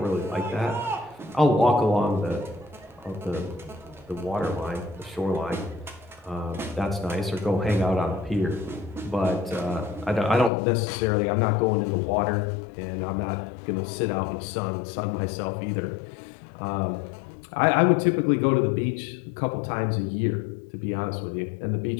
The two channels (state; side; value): drops out; right; at 10.5 s